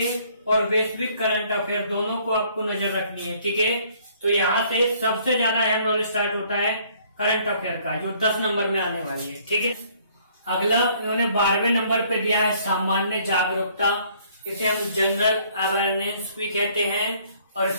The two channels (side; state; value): both; inverted; correlation -0.61